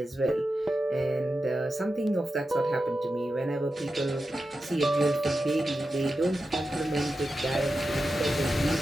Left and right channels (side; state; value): both; normal; correlation 0.91